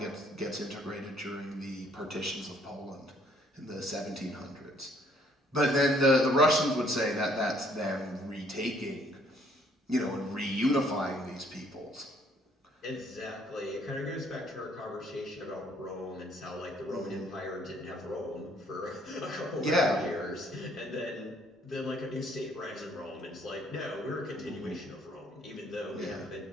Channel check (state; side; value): normal; both; correlation 0.64